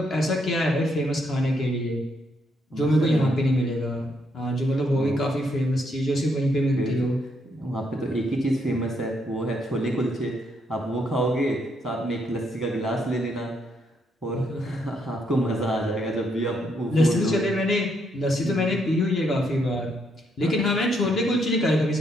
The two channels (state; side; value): normal; both; correlation 0.75